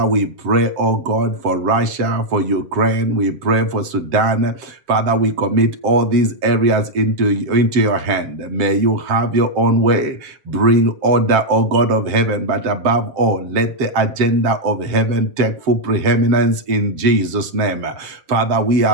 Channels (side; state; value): left; late; 7.8 ms